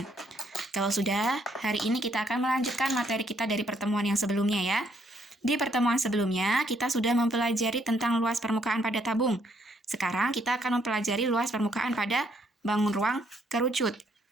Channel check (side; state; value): both; normal; correlation 0.70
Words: Kalau sudah, hari ini kita akan melanjutkan materi kita dari pertemuan yang sebelumnya ya. Di pertemuan sebelumnya, kita sudah mempelajari tentang luas permukaan pada tabung. Sekarang kita akan mempelajari luas permukaan pada bangun ruang kerucut.